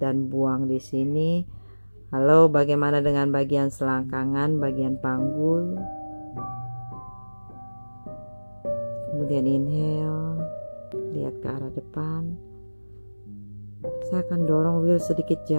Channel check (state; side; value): inverted; both; correlation -1.00